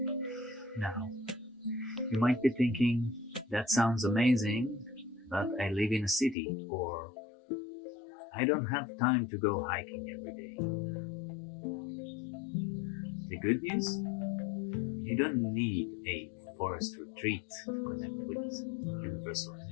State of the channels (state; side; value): drops out; right; at 6.4 s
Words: Now, you might be thinking, that sounds amazing, but I live in a city, or I don't have time to go hiking every day. The good news? You don't need a forest retreat to connect with universal